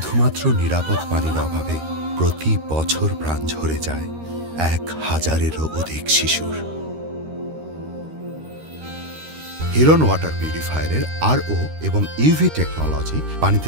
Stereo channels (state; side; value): late; left; 13 ms